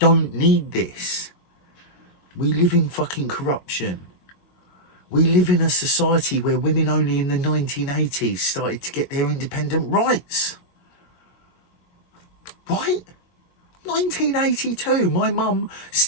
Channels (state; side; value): late; right; 22 ms